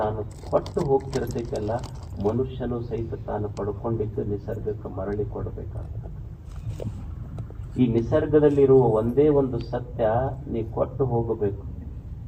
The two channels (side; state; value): both; identical; correlation 1.00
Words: ಕೊಟ್ಟು ಹೋಗ್ತಿರ್ತೈತಲ್ಲ, ಮನುಷ್ಯನು ಸಹಿತ ತಾನು ಪಡ್ಕೊಂಡಿದ್ದು ನಿಸರ್ಗಕ್ಕೆ ಮರಳಿ ಕೊಡಬೇಕಾಗ್ತದೆ. ಈ ನಿಸರ್ಗದಲ್ಲಿರುವ ಒಂದೇ ಒಂದು ಸತ್ಯ, ನೀ ಕೊಟ್ಟು ಹೋಗಬೇಕು.